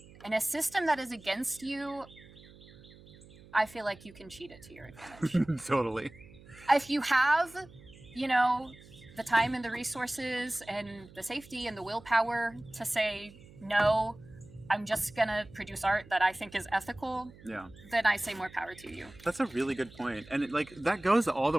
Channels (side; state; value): right; noise; hum, 22 dB below the sound